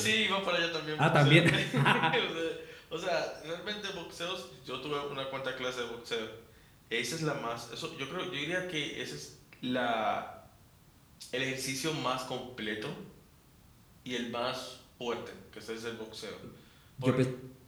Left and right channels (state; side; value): identical; both; correlation 1.00